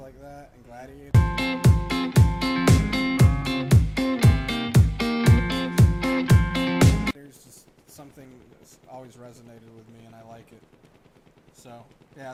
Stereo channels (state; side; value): identical; both; correlation 1.00